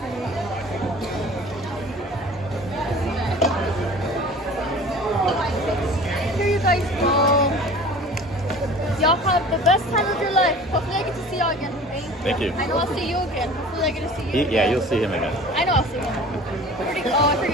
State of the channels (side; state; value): both; normal; correlation 0.43